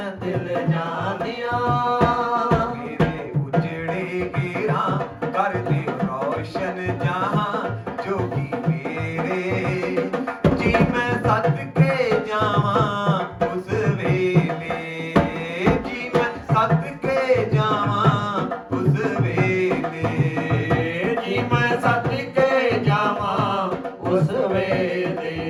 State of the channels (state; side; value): identical; both; correlation 1.00